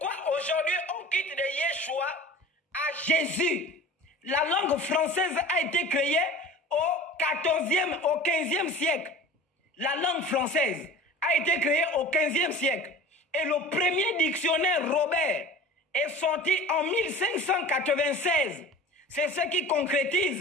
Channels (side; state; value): both; normal; correlation 0.39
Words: aujourd'hui on quitte de Yeshua à Jésus? La langue française a été créée au 14e, au 15e siècle. La langue française a été créée au 15e siècle. Et le premier dictionnaire Robert est sorti en 1596. C'est ce qui